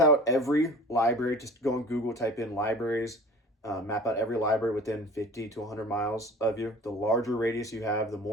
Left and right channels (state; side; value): normal; both; correlation 0.43